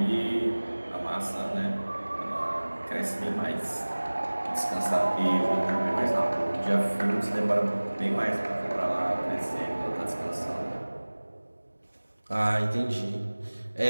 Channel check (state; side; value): inverted; both; correlation -1.00